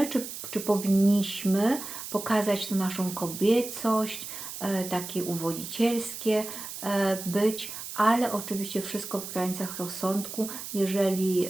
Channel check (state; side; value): noise; right; hiss, 9 dB below the sound